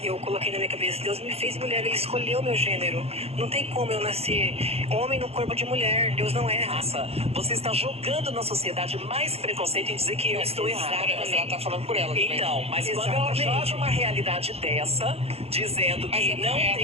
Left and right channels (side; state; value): left; late; 0.29 ms